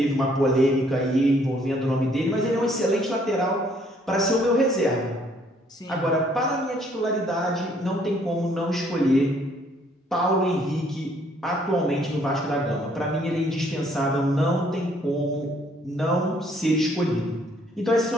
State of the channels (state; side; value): normal; both; correlation 0.64